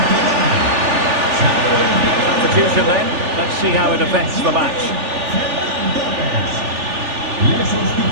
Substitution then. Let's see how it affects the match.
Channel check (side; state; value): left; late; 3.4 ms